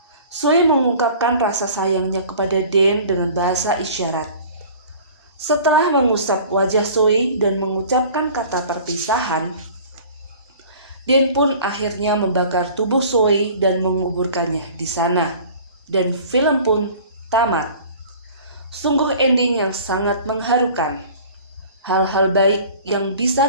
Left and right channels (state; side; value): inverted; both; correlation -0.45